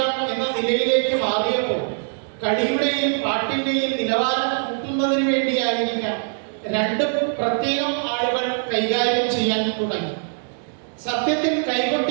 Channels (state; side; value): silent; left; digital silence